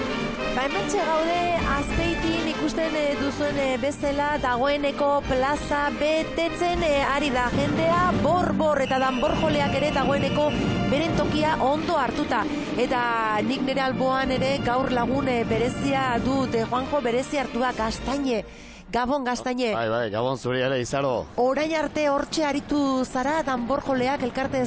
Hementxe gaude Azpeitin ikusten duzuen bezala dagoeneko plaza betetzen ari da jendea, bor eta danborjoleak ere dagoeneko beren tokia ondo hartuta. Eta nik nire alboan ere gaur lagun berezia dut, Juanjo berezi hartua, Gaztaine. Gabon, Gaztaine. Bai, Gabon zuri ere, Izaro. Orain arte hortxe aritu zara danborjoleak elkarte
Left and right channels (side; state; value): both; identical; correlation 1.00